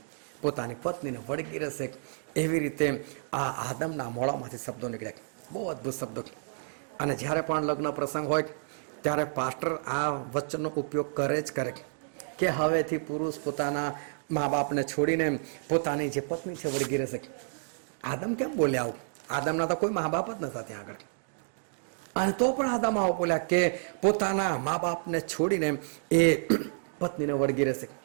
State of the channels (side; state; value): left; silent; digital silence